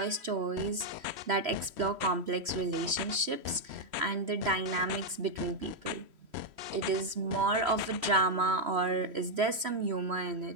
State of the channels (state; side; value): late; left; 3.1 ms